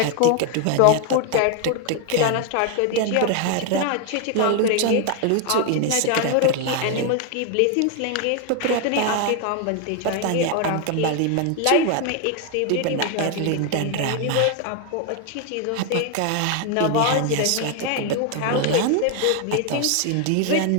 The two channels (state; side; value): different; both; correlation 0.01